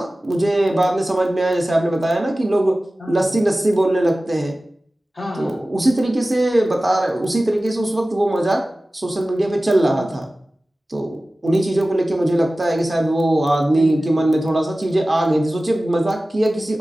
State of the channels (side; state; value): both; normal; correlation 0.96